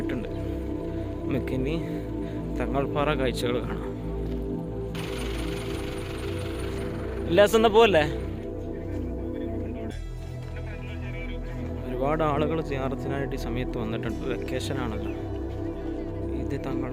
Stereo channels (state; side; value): identical; both; correlation 1.00